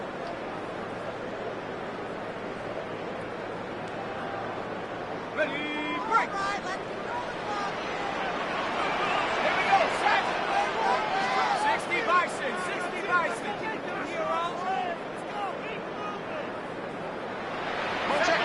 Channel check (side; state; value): both; identical; correlation 1.00